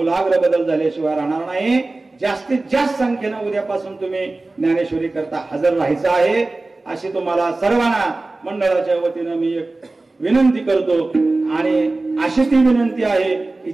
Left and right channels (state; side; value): quieter; left; 3.2 dB